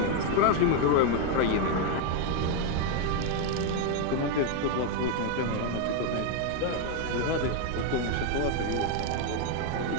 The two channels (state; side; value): different; both; correlation 0.01